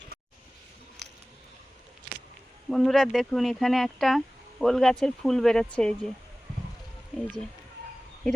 বন্ধুরা দেখুন, এখানে একটা ওল গাছের ফুল বেরোচ্ছে। এই যে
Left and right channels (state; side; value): normal; both; correlation 0.98